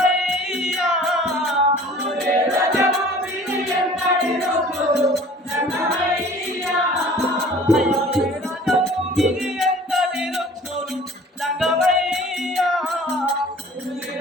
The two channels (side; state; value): both; normal; correlation 0.48